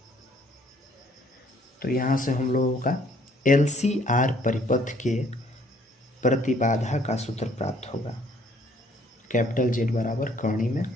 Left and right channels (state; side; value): normal; both; correlation 0.63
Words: तो यहाँ से हम लोगों का LCR परिपथ के प्रतिबाधा का सूत्र प्राप्त होगा, कैपिटल Z बराबर कर्णी में